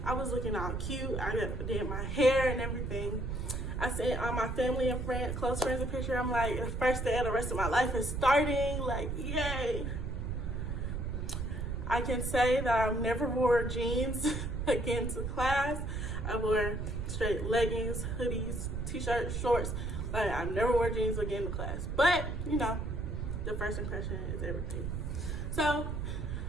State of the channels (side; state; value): right; noise; rumble, 3 dB below the sound